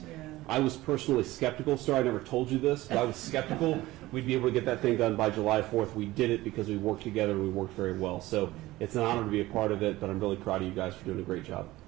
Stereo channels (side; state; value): left; quieter; 17.8 dB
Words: I was personally skeptical, sir. I never told you this, but I was skeptical we'd be able to get that thing done by July 4th. We did it because we worked together and we worked very well. So it's an honor to be a part of it, but I'm really proud of you guys for doing a great job.